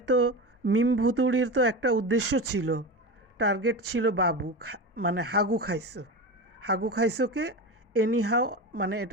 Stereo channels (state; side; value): normal; both; correlation 0.24